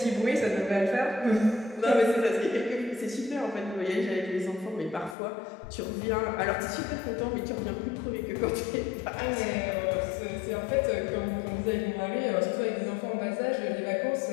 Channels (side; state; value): right; drops out; at 5.2 s